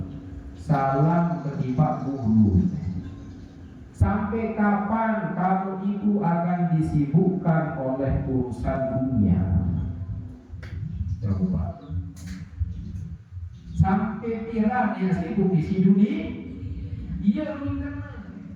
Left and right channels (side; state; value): both; identical; correlation 1.00